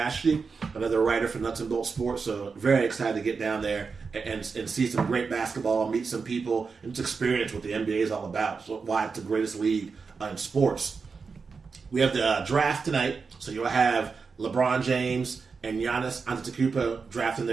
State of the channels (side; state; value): left; quieter; 5.0 dB